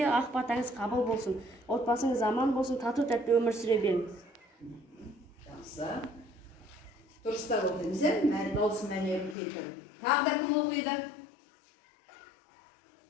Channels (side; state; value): right; drops out; at 9.3 s